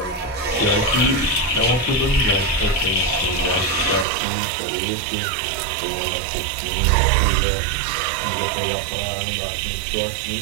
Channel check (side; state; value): left; drops out; at 4.0 s